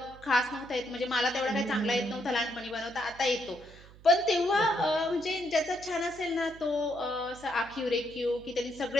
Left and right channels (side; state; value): right; noise; hum, 21 dB below the sound